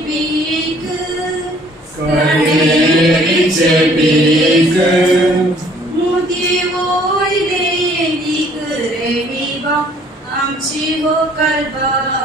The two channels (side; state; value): both; normal; correlation 0.58